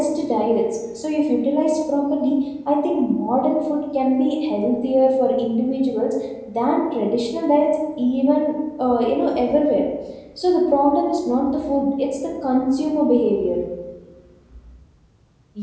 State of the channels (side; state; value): both; identical; correlation 1.00